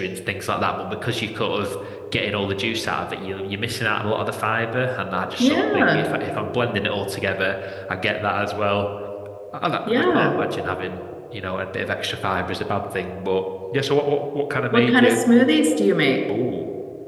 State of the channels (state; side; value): identical; both; correlation 1.00